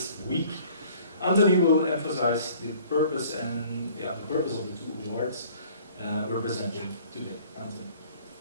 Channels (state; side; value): inverted; both; correlation -0.53